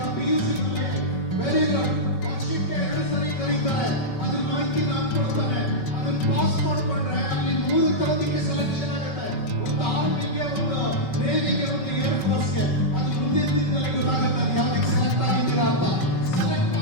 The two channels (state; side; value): late; right; 5.3 ms